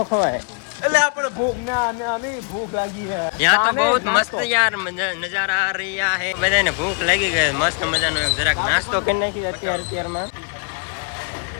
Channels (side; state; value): right; quieter; 35.4 dB